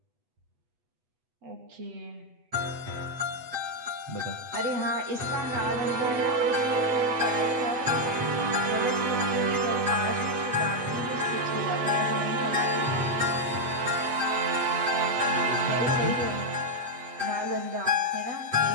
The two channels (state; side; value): late; left; 8.0 ms